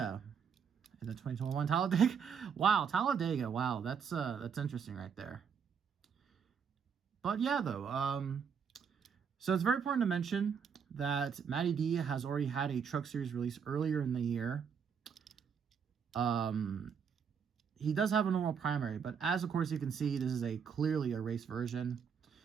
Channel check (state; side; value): quieter; left; 6.8 dB